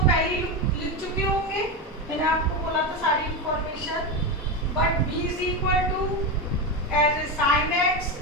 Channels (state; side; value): normal; both; correlation 0.14